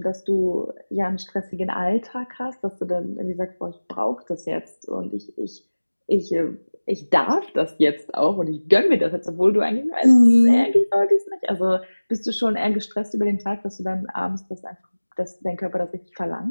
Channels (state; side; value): inverted; both; correlation -1.00